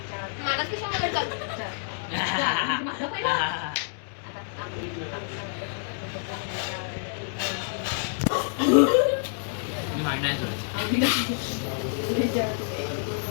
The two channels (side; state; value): right; silent; digital silence